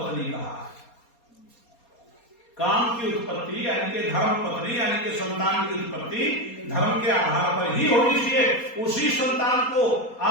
कहा। काम की उत्पत्ति यानी कि धर्म पत्नी यानी कि संतान की उत्पत्ति धर्म के आधार पर ही होनी चाहिए। उसी संतान को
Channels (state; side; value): late; right; 4.2 ms